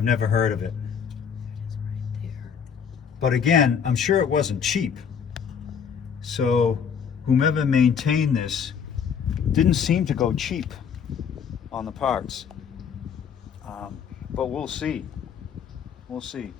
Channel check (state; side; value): quieter; right; 7.1 dB